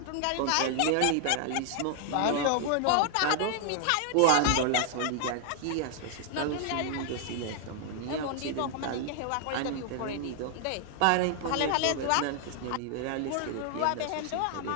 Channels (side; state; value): both; different; correlation 0.00